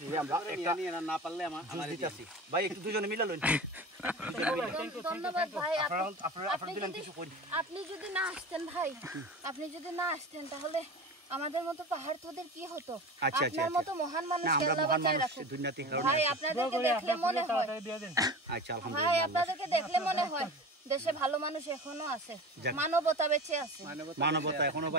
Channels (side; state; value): both; normal; correlation 0.32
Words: আমরা একটা না পারলে আমার দিতেছি ভাই, একটু দুজনে মিলা লইন। ধন্যবাদ ভাই। আপনি যদি না আসতেন ভাই, আপনি যদি না আসতেন তাহলে আমাদের মতো পাহাড় তোদের কি হতো? আপনার মতো মহান মানুষ আল্লাহ বাঁচায় রাখুক ভাই। আপনাদেরকে দেখলে মনে হয়, আচ্ছা ভাই আপনাদেরকে দেখলে মনে হয় দেশে ভালো মানুষ এখনো আছে, মানবতা বেঁচে আছে, মানবতা এখনো